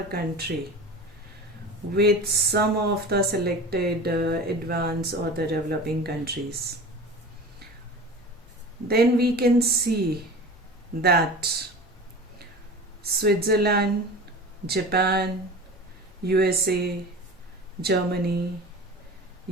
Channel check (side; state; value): both; normal; correlation 0.35